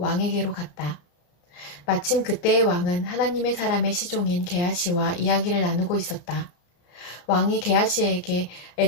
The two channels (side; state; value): right; late; 34 ms